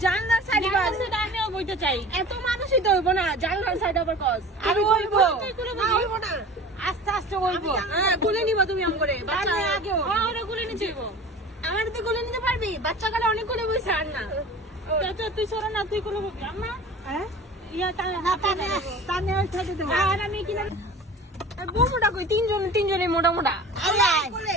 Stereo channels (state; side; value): normal; both; correlation 0.39